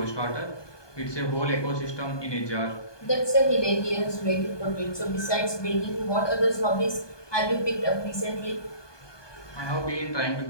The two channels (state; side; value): late; right; 1.2 ms